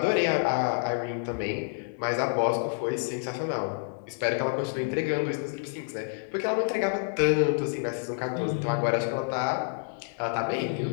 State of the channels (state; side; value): silent; right; 57 dB below the other